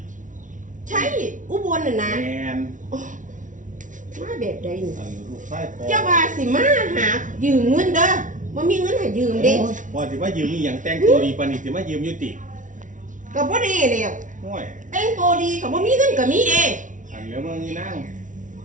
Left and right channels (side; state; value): left; late; 0.37 ms